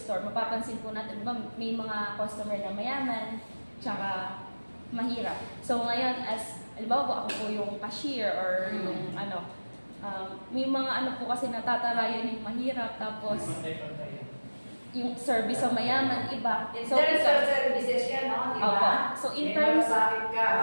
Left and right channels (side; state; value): both; inverted; correlation -1.00